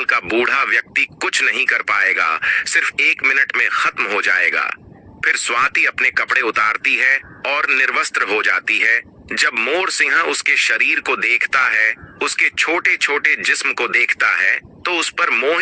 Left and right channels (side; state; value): both; identical; correlation 1.00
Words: का बूढ़ा व्यक्ति कुछ नहीं कर पाएगा, सिर्फ 1 मिनट में खत्म हो जाएगा। फिर स्वाति अपने कपड़े उतारती है और निर्वस्त्र हो जाती है। जब मोर सिंह उसके शरीर को देखता है, उसके छोटे छोटे जिस्म को देखता है, तो उस पर